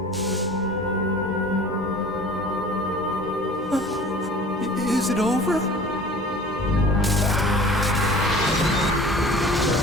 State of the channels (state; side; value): normal; both; correlation 0.45